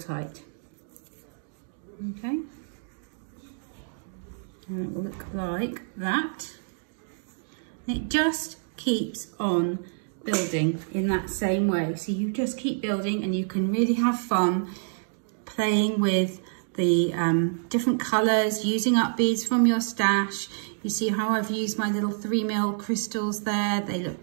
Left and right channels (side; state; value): left; silent; digital silence